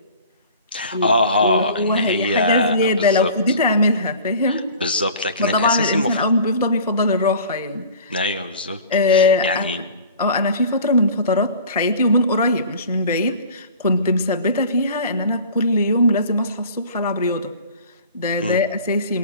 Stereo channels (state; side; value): inverted; both; correlation -0.43